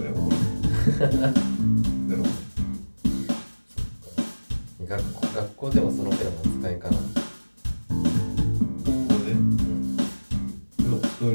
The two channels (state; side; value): inverted; both; correlation -1.00